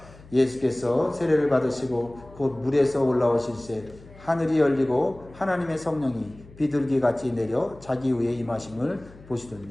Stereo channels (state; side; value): noise; left; hum, 22 dB below the sound